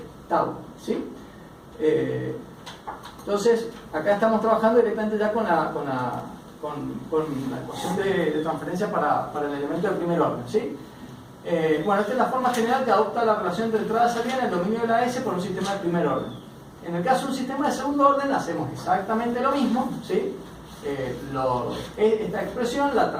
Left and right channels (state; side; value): identical; both; correlation 1.00